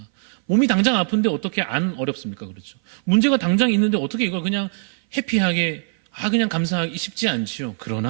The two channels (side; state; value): left; silent; 58 dB below the other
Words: 몸이 당장 아픈데 어떻게 안 어렵습니까? 그렇죠. 문제가 당장 있는데 어떻게 이걸 그냥 해피하게 그냥 감사하기 쉽지 않지요.